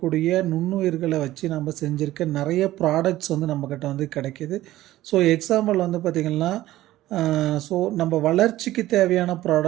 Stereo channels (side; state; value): left; quieter; 15.4 dB